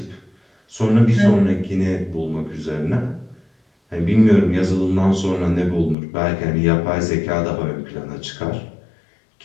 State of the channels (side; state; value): right; drops out; at 6.0 s